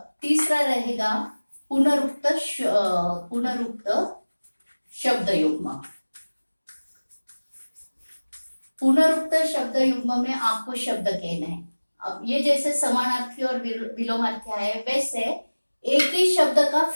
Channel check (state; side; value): inverted; both; correlation -1.00